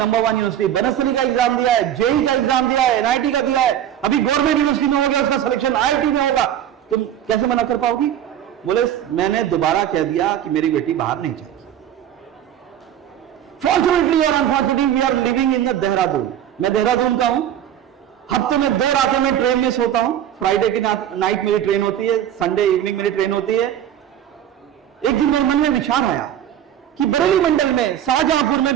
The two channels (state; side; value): quieter; left; 10.6 dB